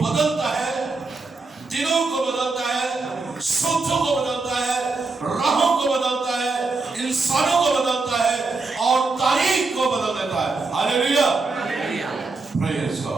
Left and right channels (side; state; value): left; quieter; 3.7 dB